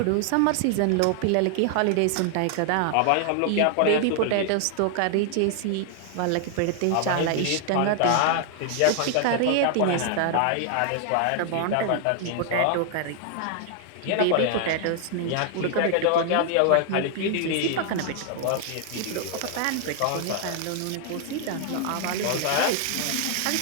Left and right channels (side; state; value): both; different; correlation 0.00